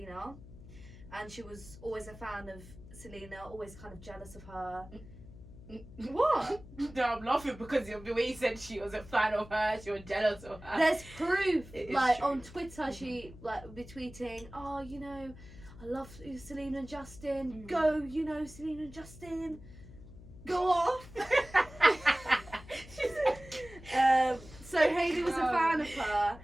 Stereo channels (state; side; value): noise; left; hum, 17 dB below the sound